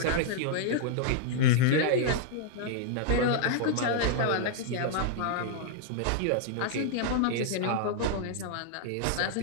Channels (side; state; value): both; different; correlation -0.01